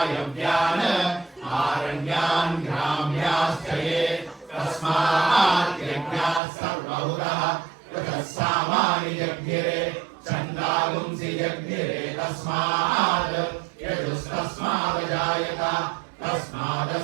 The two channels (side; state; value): left; drops out; at 6.4 s